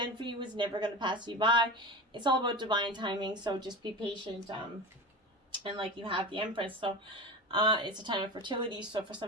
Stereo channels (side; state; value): both; normal; correlation 0.27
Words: for you is never going to pass you by. It's all about divine timing, so just be patient. And like you have the Empress, so it's a time of fertility, so for